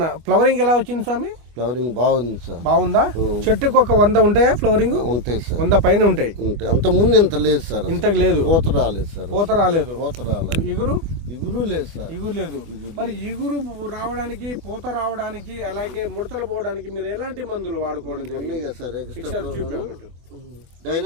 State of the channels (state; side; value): late; left; 25 ms